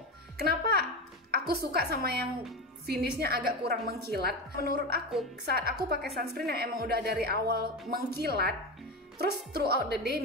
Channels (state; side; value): normal; both; correlation 0.20